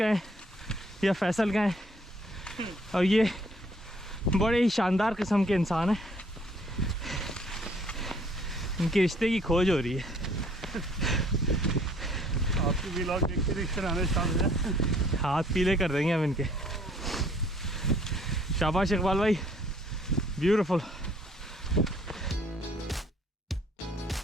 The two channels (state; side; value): normal; both; correlation 0.61